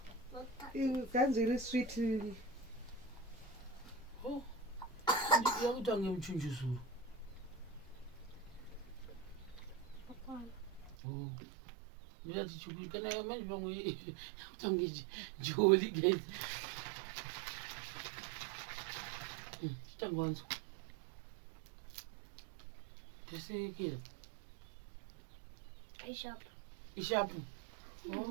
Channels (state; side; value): drops out; left; at 11.0 s